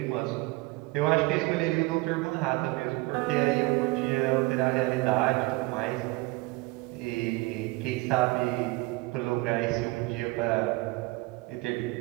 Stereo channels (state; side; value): quieter; left; 23.2 dB